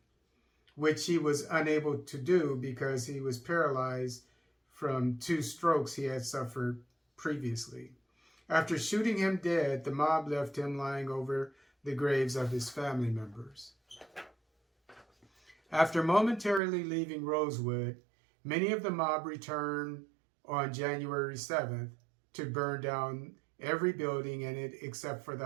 which he was unable to do because he was paralyzed from 2 strokes he had suffered previously. After shooting him dead, the mob left him lying over the graves of his family members. After momentarily leaving Rosewood, many of the mob returned on January 7th to burn down every building in it except for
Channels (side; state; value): left; drops out; at 16.6 s